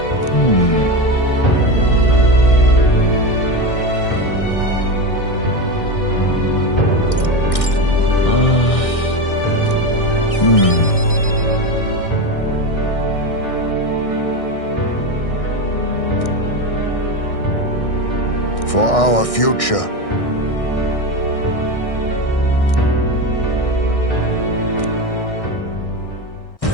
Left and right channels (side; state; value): right; late; 1.6 ms